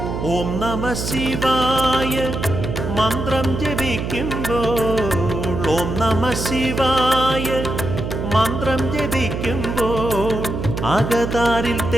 ഓം നമ ശിവായ മന്ത്രം ജപിക്കുമ്പോൾ ഓം നമ ശിവായ മന്ത്രം ജപിക്കുമ്പോൾ അകതാരിൽ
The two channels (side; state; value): right; noise; hum, 4 dB below the sound